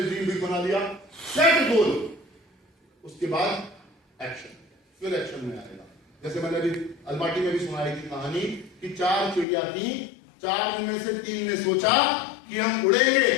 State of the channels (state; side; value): drops out; right; at 9.5 s